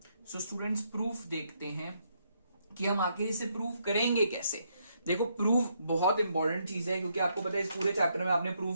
So students proof देखते हैं कि हम आखिर इसे प्रूफ करेंगे कैसे। देखो प्रूफ बहुत इंपॉर्टेंट चीज है क्योंकि आपको पता है इस पूरे चैप्टर में आपने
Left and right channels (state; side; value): inverted; both; correlation -0.75